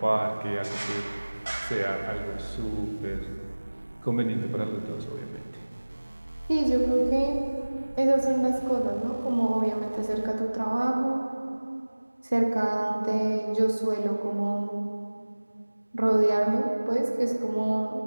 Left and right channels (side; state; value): both; inverted; correlation -1.00